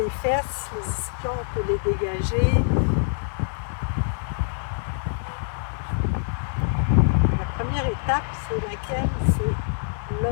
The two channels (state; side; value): silent; right; digital silence